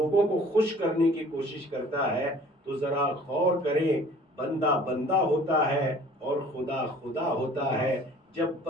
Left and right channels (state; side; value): normal; both; correlation 0.51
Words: کو خوش کرنے کی کوشش کرتا ہے، تو ذرا غور کریں، بندہ بندہ ہوتا ہے اور خدا خدا ہوتا ہے۔ جب